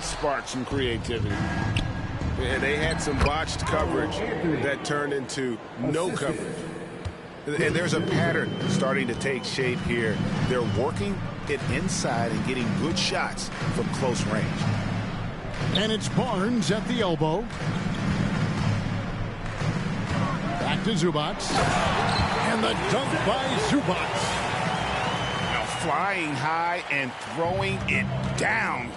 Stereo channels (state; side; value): identical; both; correlation 1.00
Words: spark some creativity. Yeah, they had some botched coverage that turned into no coverage. And there's a pattern starting to take shape here. They're working it inside and getting good shots from close range. And it's Barnes at the elbow. Back to Zubac. And the dunk by Zubac. Now flying high and throwing it down